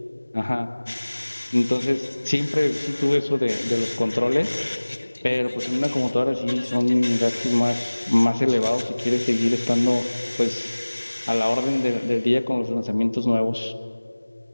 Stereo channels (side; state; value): both; inverted; correlation -1.00